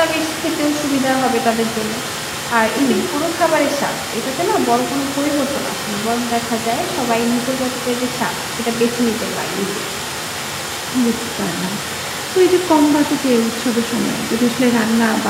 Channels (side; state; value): both; identical; correlation 1.00